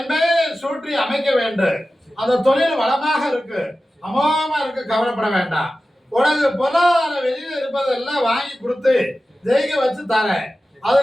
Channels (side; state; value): both; normal; correlation 0.95